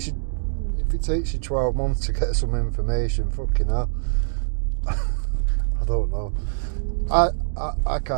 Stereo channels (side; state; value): left; silent; digital silence